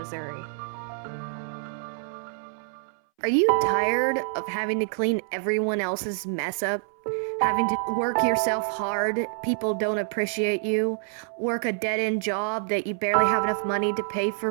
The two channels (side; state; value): left; silent; 60 dB below the other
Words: Are you tired of having to clean everyone else's mess up? Having to work yourself hard, people don't appreciate you, work a dead end job that you barely have enough money to pay